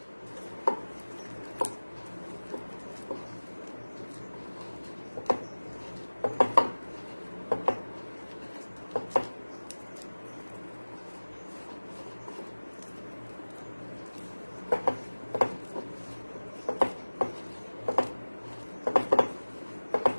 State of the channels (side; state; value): both; inverted; correlation -1.00